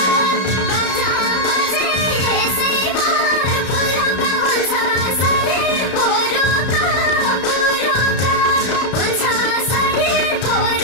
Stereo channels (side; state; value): right; late; 32 ms